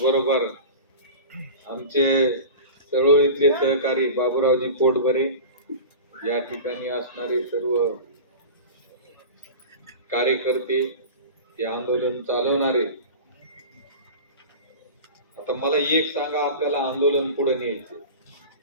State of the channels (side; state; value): both; inverted; correlation -0.34